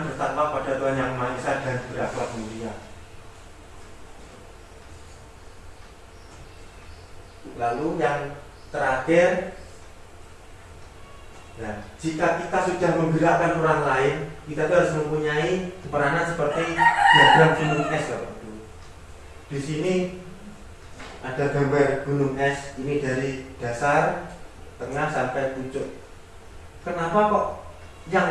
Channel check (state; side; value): identical; both; correlation 1.00